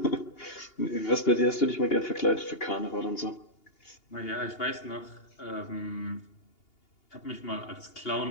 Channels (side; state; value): right; late; 2.8 ms